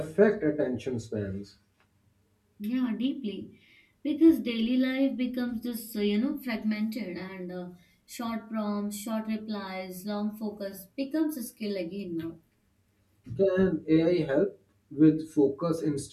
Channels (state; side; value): identical; both; correlation 1.00